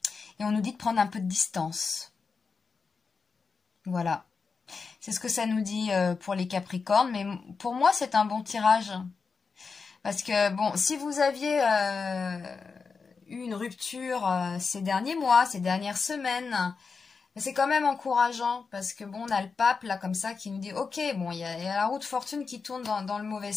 Et on nous dit de prendre un peu de distance. Voilà. C'est ce que ça nous dit pour les Capricornes, mais pour moi, c'est un bon tirage. Parce que, bon, si vous aviez eu une rupture ces derniers mois, ces dernières semaines, c'est quand même encourageant. Parce que, bon, on a le pape, là, comme ça, qui nous dit, ok, bon, il y a la roue de fortune qui tourne dans le mauvais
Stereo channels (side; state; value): right; quieter; 5.0 dB